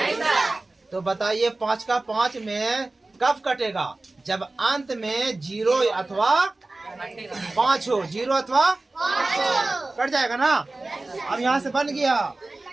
तो बताइए 5 का 5 में कब कटेगा? जब अंत में 0 अथवा 5 हो। 0 अथवा 5 कट जाएगा ना। अब यहाँ से बन गया,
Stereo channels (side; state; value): left; quieter; 3.1 dB